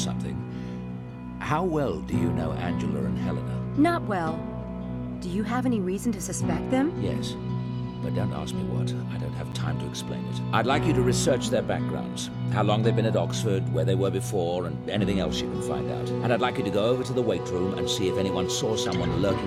How well do you know Angela and Helena? Not well. Do you have any reason to suspect them? Yes. But don't ask me what. I don't have time to explain it. I'd like you to research their backgrounds. How long they've been at Oxford, where they were before, and anything else you can find out. And I'd like you to go over to the weight room and see if anyone saw someone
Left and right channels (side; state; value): both; identical; correlation 1.00